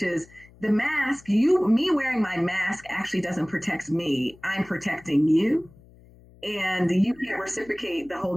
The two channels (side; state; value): left; noise; hum, 25 dB below the sound